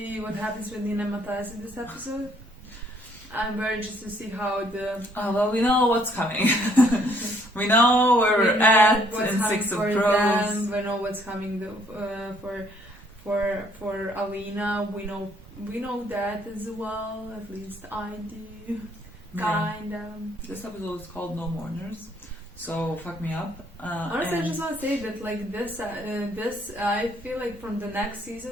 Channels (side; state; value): both; normal; correlation 0.65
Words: what happens with Nina and Matthias in this episode. I'm very interested to see how the... Well, we know what's coming. We know where we're at in Six of Crows. We know what's coming for Alina. We know that as well. At least I do. Kind of. This episode is called No Mourners, so fuck me up. Honestly, I just want to say that like this, I feel like from the next